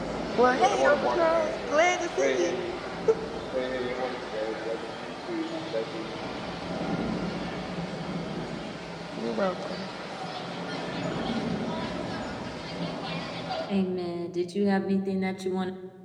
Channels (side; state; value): both; identical; correlation 1.00